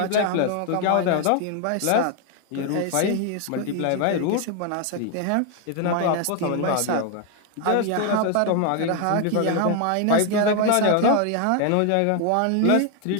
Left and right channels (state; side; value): different; both; correlation 0.01